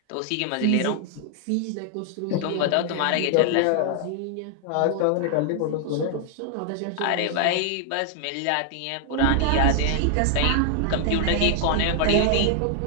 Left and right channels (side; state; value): both; different; correlation 0.00